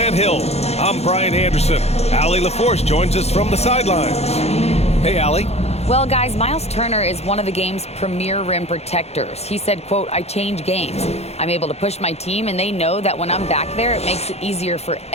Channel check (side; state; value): right; late; 0.31 ms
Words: Hill, I'm Brian Anderson. Allie LaForce joins us from the sidelines. Hey, Allie. Well, guys, Miles Turner is one of the game's premier rim protectors. He said, quote, "I change games. I'm able to push my team, and they know that when I'm back there, it makes it easier for